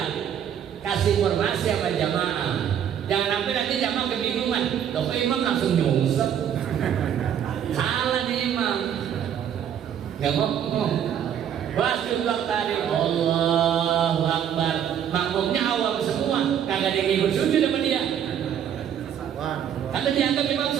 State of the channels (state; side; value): quieter; left; 9.2 dB